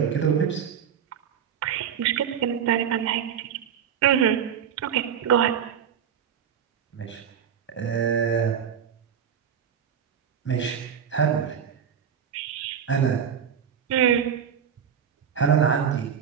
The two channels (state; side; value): quieter; left; 8.1 dB